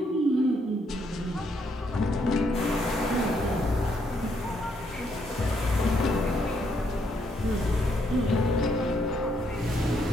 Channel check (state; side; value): normal; both; correlation 0.74